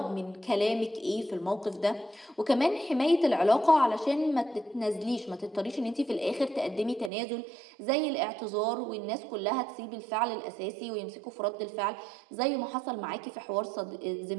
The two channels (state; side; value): drops out; left; at 7.1 s